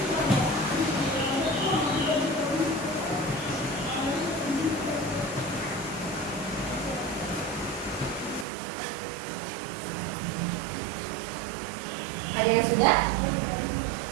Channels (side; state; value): left; drops out; at 8.5 s